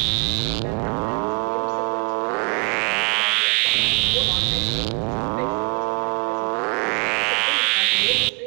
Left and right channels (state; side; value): quieter; left; 39.0 dB